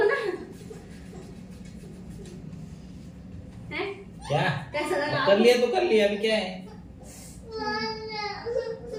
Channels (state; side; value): identical; both; correlation 1.00